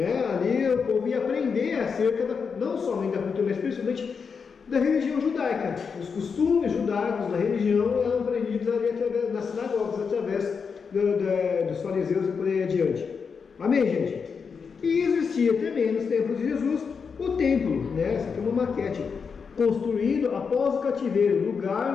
Ali o povo ia aprender acerca não somente da cultura, mas principalmente da religião judaica. Os costumes judaicos da religião eram aprendidos ali através das sinagogas, através dos fariseus e por aí adiante. Amém, gente? E existia também nos tempos de Jesus o templo, né? Essa aqui é uma maquete, construído após o cativeiro,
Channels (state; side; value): quieter; right; 5.8 dB